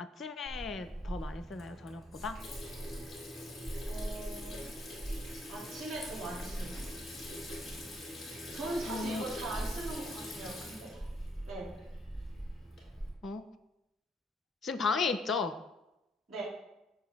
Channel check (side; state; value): both; normal; correlation 0.70